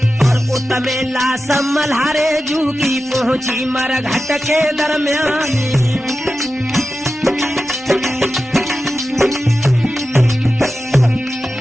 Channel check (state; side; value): normal; both; correlation 0.93